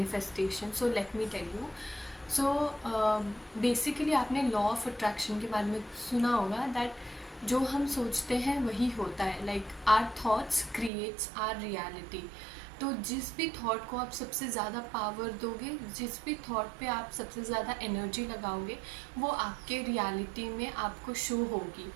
so let me tell you. So basically आपने law of attraction के बारे में सुना होगा दैट जो हम सोचते हैं वही होता है। Like our thoughts creates our reality. तो जिस भी थॉट को आप सबसे ज़्यादा पावर दोगे, जिस भी थॉट पे आप सबसे ज़्यादा एनर्जी लगाओगे, वो आपके रियलिटी में आपको शो होगी।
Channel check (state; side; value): drops out; left; at 10.9 s